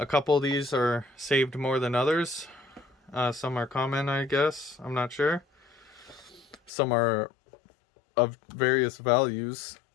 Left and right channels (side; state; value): right; drops out; at 6.7 s